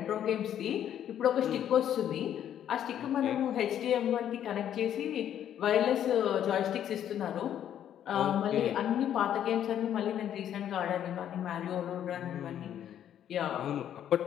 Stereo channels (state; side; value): quieter; right; 10.2 dB